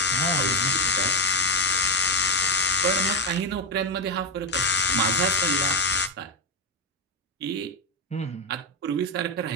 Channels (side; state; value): both; normal; correlation 0.10